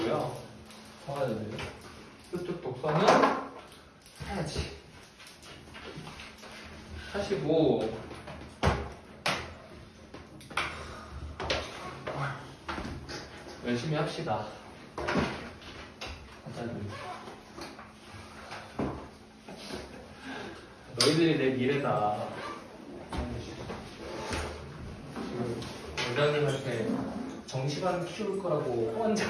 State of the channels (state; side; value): identical; both; correlation 1.00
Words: 사야 돼요? 수특 독서는 사야지. 하시고 열심히 합시다. 사야 돼요. 너희들이 내 미래다. 원장님한테 정시반 키울 거라고